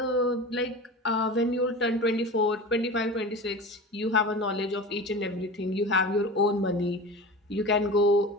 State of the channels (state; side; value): normal; both; correlation 0.32